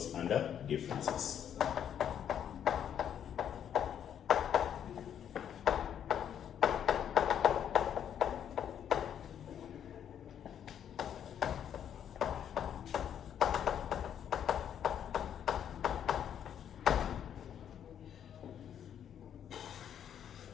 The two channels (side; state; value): right; quieter; 9.3 dB